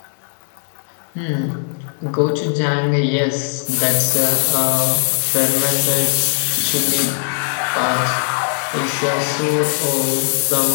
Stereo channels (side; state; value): right; silent; digital silence